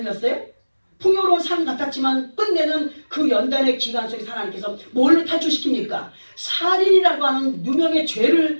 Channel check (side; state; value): both; inverted; correlation -1.00